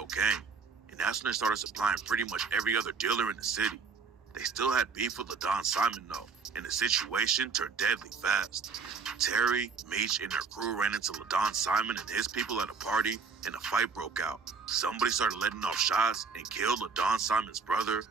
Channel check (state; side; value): quieter; left; 5.2 dB